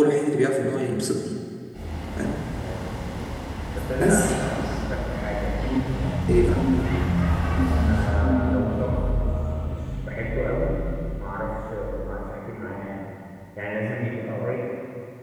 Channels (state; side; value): identical; both; correlation 1.00